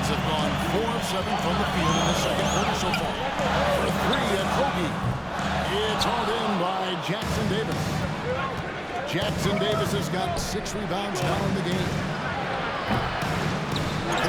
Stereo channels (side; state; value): both; identical; correlation 1.00